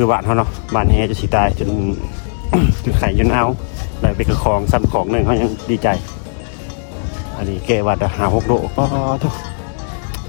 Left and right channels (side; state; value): right; silent; digital silence